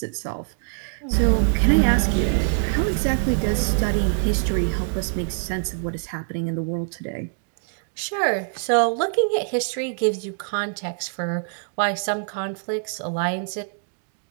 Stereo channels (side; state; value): left; silent; digital silence